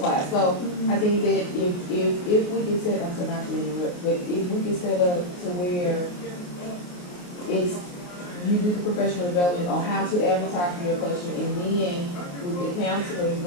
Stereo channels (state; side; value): late; right; 28 ms